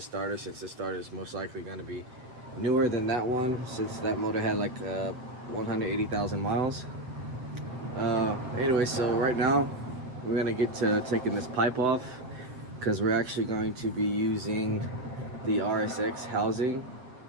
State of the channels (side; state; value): left; late; 8.1 ms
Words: starter, since this starter is most likely gonna be newer than that one, since that motor had like 180,000 miles. Anyway, so right now we're gonna get to taking this pipe off, because we're actually going to be using the Rsx housing